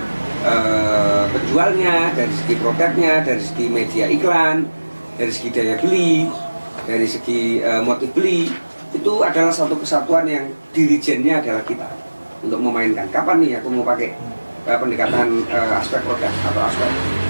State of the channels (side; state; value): both; inverted; correlation -1.00